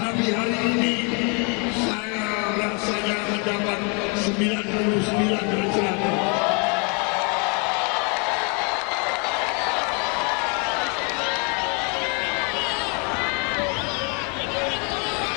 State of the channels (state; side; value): quieter; right; 34.7 dB